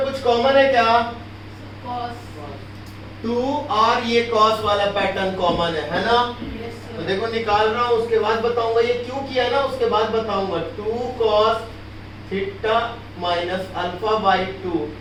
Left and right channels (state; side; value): identical; both; correlation 1.00